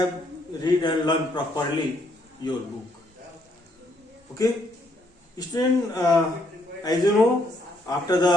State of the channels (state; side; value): normal; both; correlation 0.72